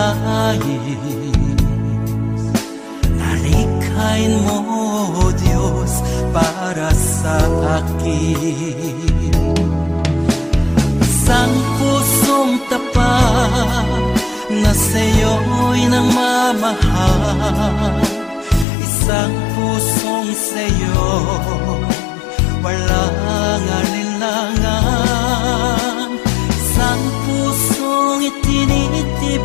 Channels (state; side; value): drops out; right; at 18.7 s